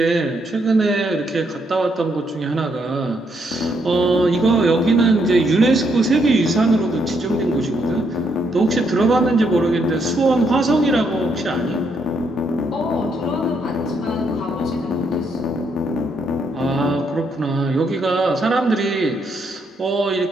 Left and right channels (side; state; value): both; normal; correlation 0.75